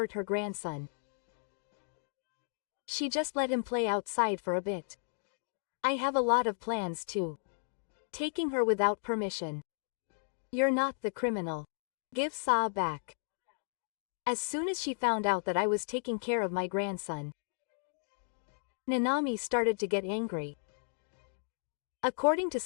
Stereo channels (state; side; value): silent; right; digital silence